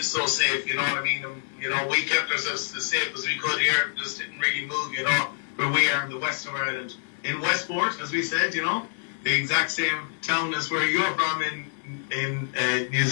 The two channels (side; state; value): right; silent; digital silence